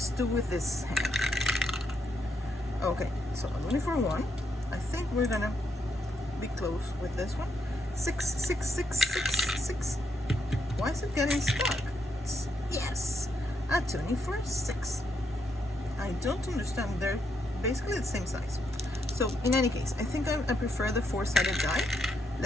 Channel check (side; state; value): both; normal; correlation 0.78